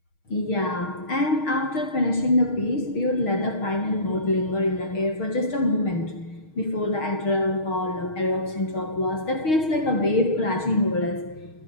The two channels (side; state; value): right; late; 6.4 ms